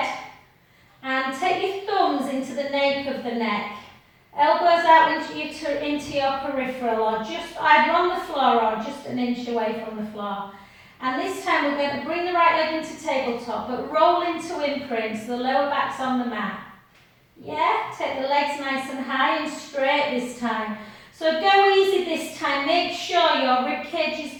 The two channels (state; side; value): identical; both; correlation 1.00